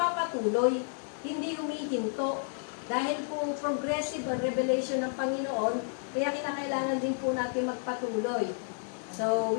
hindi humihinto. Dahil po progressive ang revelation ng Panginoon, kaya kinakailangan din po natin magpatuloy. So,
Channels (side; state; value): right; silent; digital silence